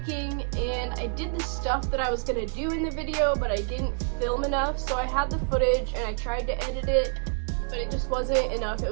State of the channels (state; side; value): silent; left; digital silence